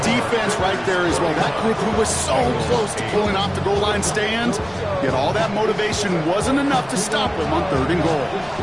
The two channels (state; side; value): noise; left; rumble, 24 dB below the sound